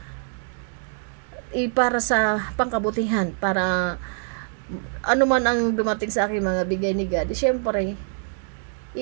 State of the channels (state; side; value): silent; left; 62 dB below the other